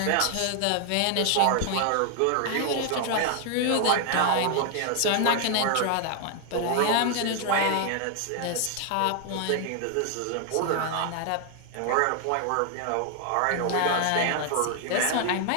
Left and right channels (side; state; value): both; different; correlation 0.00